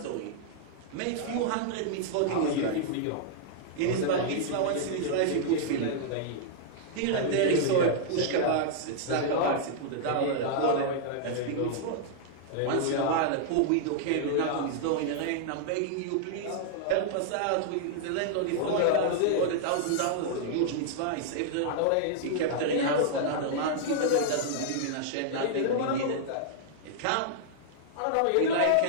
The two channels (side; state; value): both; different; correlation -0.01